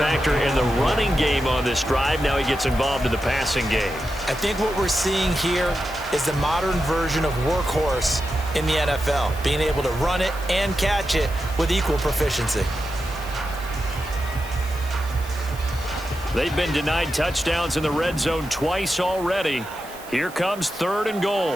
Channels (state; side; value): noise; right; hiss, 18 dB below the sound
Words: in the running game on this drive. Now he gets involved in the passing game. I think what we're seeing here is the modern version of workhorse in the NFL, being able to run it and catch it with equal proficiency. They've been denied touchdowns in the red zone twice already. Here comes 3rd and